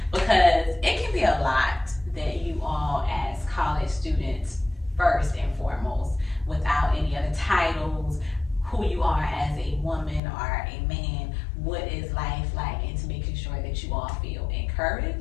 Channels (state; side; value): drops out; right; at 10.2 s